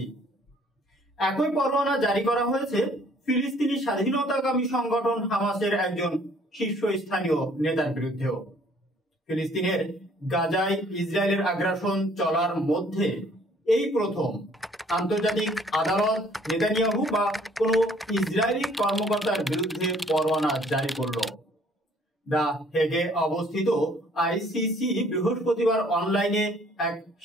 একই পরোয়ানা জারি করা হয়েছে ফিলিস্তিনি স্বাধীনতাকামী সংগঠন হামাসের একজন শীর্ষস্থানীয় নেতার বিরুদ্ধেও। ফিলিস্তিনের গাজায় ইসরায়েলের আগ্রাসন চলার মধ্যে এই প্রথম আন্তর্জাতিক আদালত নেতানিয়াহু বা কোনো ইসরায়েলি কর্মকর্তার বিরুদ্ধে পরোয়ানা জারি করল। দ্য হেগে অবস্থিত আইসিসি বৃহস্পতিবার অনলাইনে এক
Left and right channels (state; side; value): normal; both; correlation 0.59